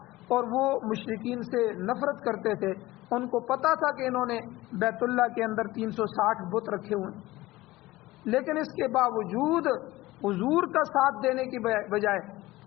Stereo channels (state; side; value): quieter; right; 18.4 dB